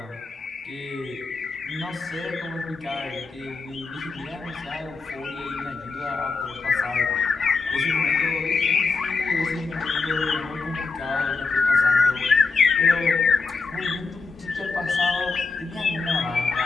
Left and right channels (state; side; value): quieter; right; 4.4 dB